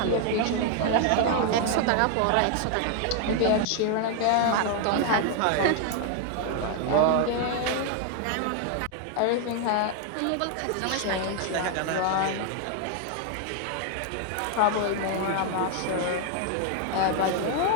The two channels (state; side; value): different; both; correlation 0.00